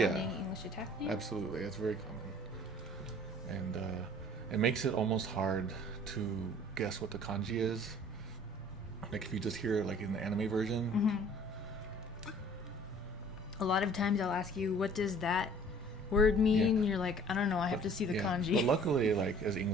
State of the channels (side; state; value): both; normal; correlation 0.51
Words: English attack name? Absolutely, that's very common. And it makes it almost hard to guess what the kanji is. Like if you just hear it like in the anime version. Mm-hmm. A lot of times I'll ask you, what does that word mean? You're like, I don't know, I have to see the kanji. But luckily, like as